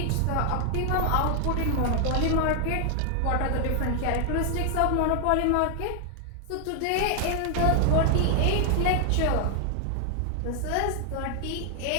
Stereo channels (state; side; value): different; both; correlation 0.00